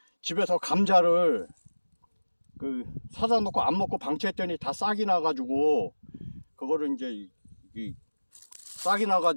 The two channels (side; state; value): both; inverted; correlation -1.00